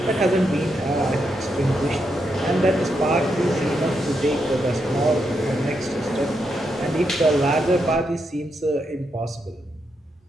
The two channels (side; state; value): both; normal; correlation 0.82